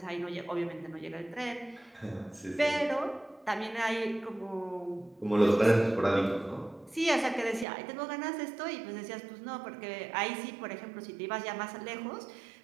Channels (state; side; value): drops out; left; at 7.7 s